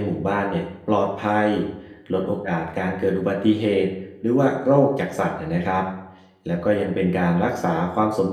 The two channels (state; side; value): identical; both; correlation 1.00